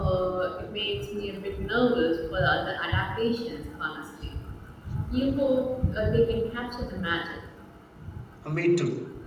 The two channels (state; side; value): identical; both; correlation 1.00